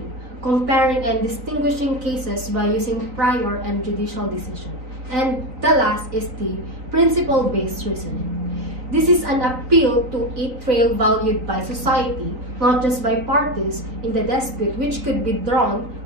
comparing and distinguishing cases by using prior and judicial decision. And the last is the principle-based reasoning. This is an appeal to a trail valued by society, not just by parties in the dispute, which could be drawn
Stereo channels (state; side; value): late; left; 3.9 ms